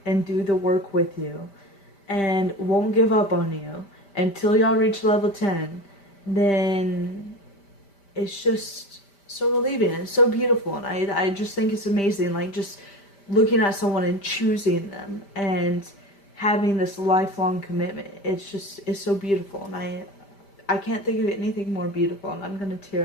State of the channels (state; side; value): late; right; 5.1 ms